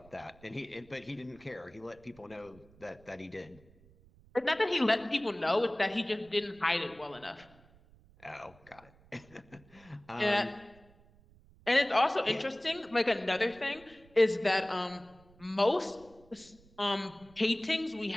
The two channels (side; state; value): right; noise; rumble, 26 dB below the sound